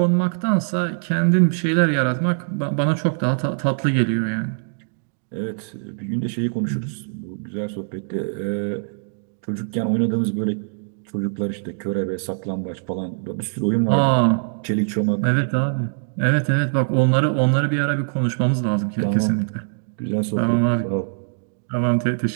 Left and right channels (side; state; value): left; silent; digital silence